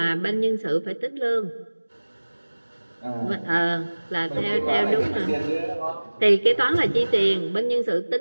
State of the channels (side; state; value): both; inverted; correlation -1.00